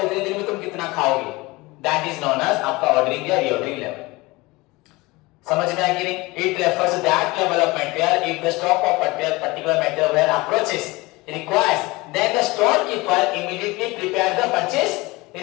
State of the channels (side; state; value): right; quieter; 22.4 dB